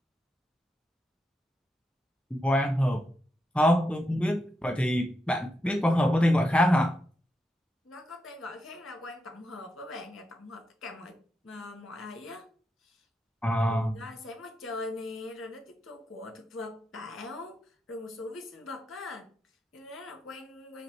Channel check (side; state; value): both; normal; correlation 0.85